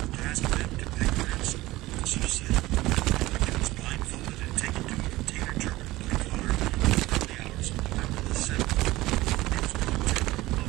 ask them to pay ransom. Officers said the victim was blindfolded and taken to a container terminal by car in the early hours of November the 7th. It was brought to a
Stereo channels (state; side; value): quieter; left; 18.2 dB